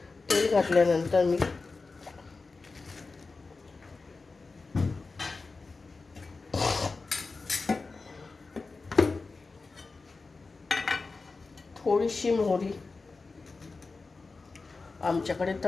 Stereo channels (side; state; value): right; quieter; 3.9 dB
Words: तेल घातल्यानंतर मी थोडीशी मोहरी, आमच्याकडे